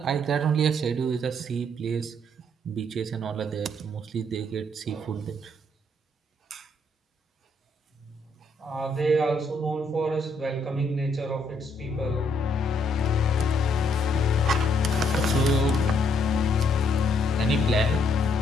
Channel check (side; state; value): both; normal; correlation 0.71